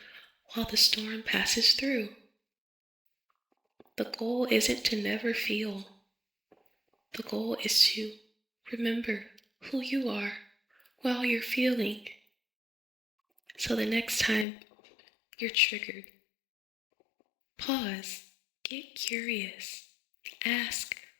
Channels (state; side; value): drops out; right; at 14.5 s